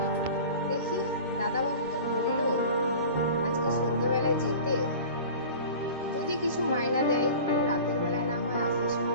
দেখি দাদাবাবু তো বললো আজকে সন্ধ্যেবেলায় যেতে, যদি কিছু মাইনা দেয় তাহলে রাতের বেলায় না হয় আসার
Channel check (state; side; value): inverted; both; correlation -0.38